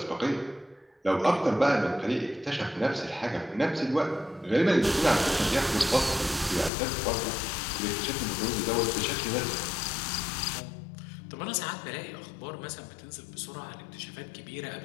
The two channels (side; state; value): right; drops out; at 6.7 s